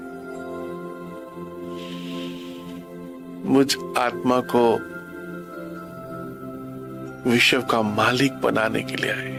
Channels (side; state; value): both; identical; correlation 1.00